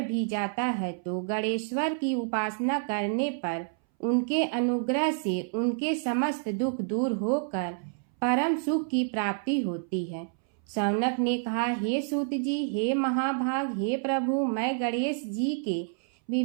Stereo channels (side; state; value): left; silent; 59 dB below the other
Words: जाता है तो गणेश्वर की उपासना करने पर उनके अनुग्रह से उनके समस्त दुख दूर होकर परम सुख की प्राप्ति होती है। शौनक ने कहा, हे सूत जी, हे महाभाग, हे प्रभु, मैं गणेश जी के